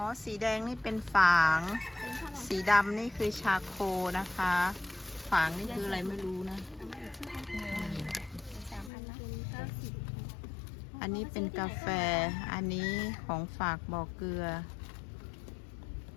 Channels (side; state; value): right; drops out; at 8.9 s